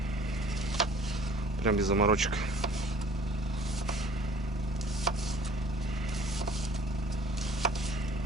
Прям без заморочек.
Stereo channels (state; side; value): normal; both; correlation 0.53